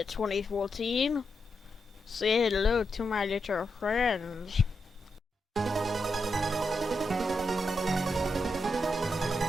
2014. Say hello to my little friends.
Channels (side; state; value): both; normal; correlation 0.85